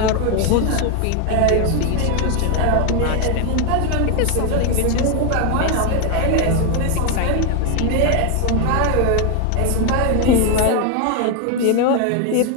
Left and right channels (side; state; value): both; different; correlation 0.01